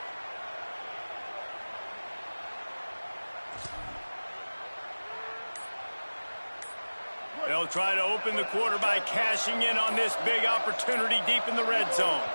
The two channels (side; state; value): both; inverted; correlation -1.00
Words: They'll try to open the quarter by cashing in on this big opportunity deep in the red zone.